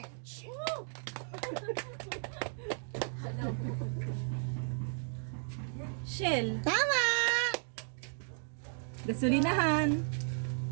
Shell. Tama! Gasolinahan.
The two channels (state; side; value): silent; left; 55 dB below the other